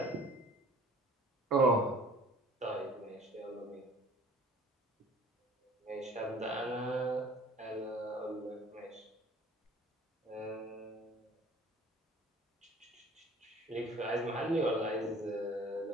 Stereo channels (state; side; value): normal; both; correlation 0.50